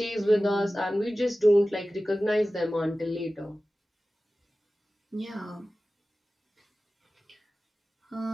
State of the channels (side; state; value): both; normal; correlation 0.96